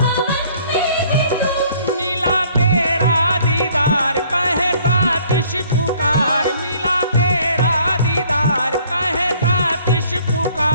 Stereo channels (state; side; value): inverted; both; correlation -0.58